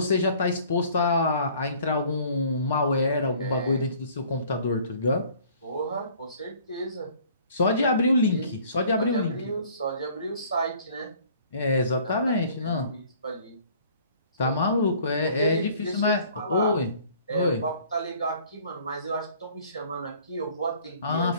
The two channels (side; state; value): both; inverted; correlation -0.54